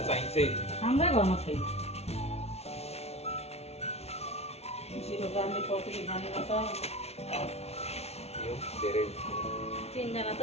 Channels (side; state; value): right; late; 0.31 ms